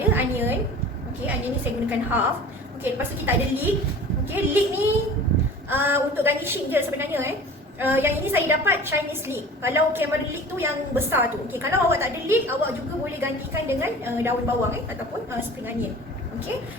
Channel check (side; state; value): both; normal; correlation 0.41